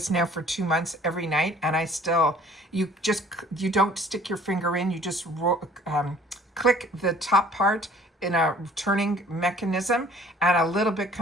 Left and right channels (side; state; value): both; normal; correlation 0.54